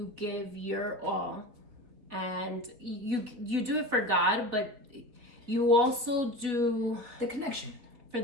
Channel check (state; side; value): late; left; 4.0 ms